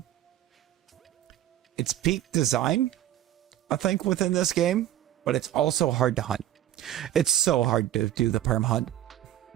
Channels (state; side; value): quieter; left; 12.7 dB